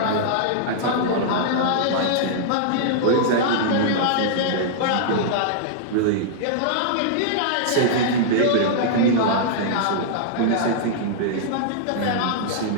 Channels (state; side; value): different; both; correlation -0.02